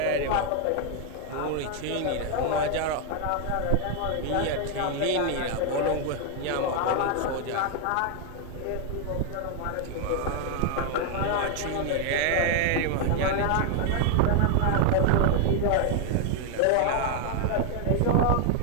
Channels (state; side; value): different; both; correlation 0.00